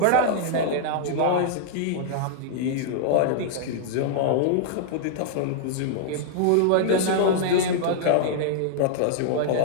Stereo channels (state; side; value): different; both; correlation -0.01